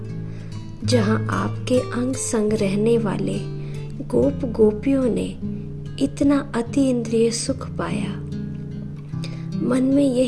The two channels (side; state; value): both; identical; correlation 1.00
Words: जहां आपके अंग संग रहने वाले गोप गोपियों ने इतना अति इंद्रिय सुख पाया। मन में